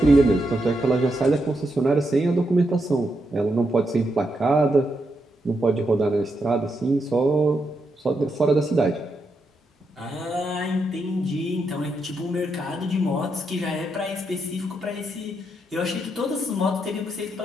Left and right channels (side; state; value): both; normal; correlation 0.82